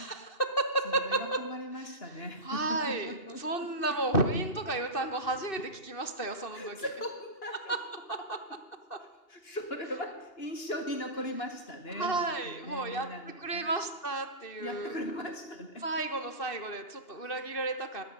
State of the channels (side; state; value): right; late; 2.8 ms